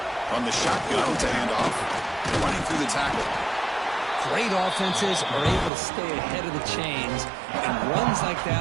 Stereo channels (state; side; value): drops out; left; at 5.7 s